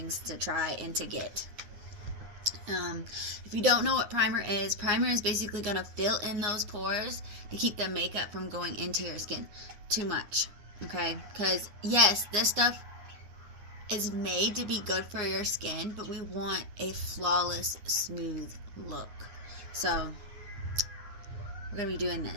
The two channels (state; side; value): late; left; 9.7 ms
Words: to try and to get. If you don't know what primer is basically going to fill in those pores to keep the makeup from going into your skin too much. Okay? Because, yes, this stuff is made to be good for your skin, but we want a flawless, smooth look. So, we're going to be doing